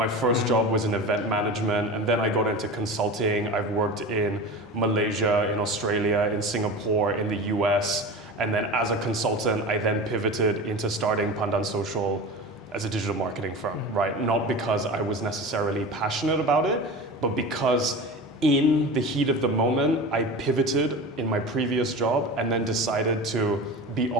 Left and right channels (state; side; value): normal; both; correlation 0.31